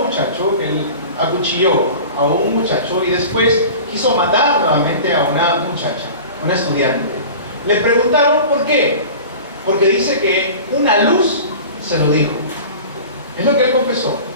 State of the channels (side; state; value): both; inverted; correlation -0.37